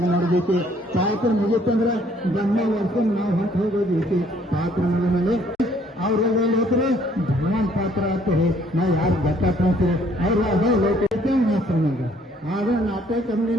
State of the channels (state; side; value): normal; both; correlation 0.63